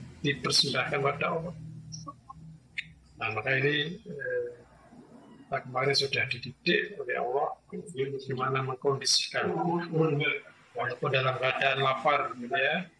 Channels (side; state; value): both; identical; correlation 1.00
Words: dipersembahkan pada Allah. Nah, maka ini kemarin sudah dididik oleh Allah bagaimana mengkondisikan walaupun dalam keadaan lapar, gitu ya,